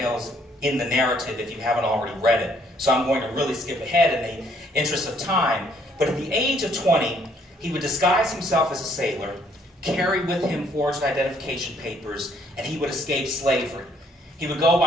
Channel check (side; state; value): both; normal; correlation 0.65